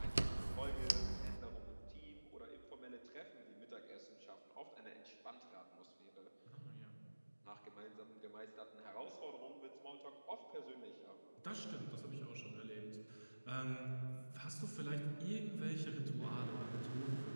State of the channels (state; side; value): inverted; both; correlation -1.00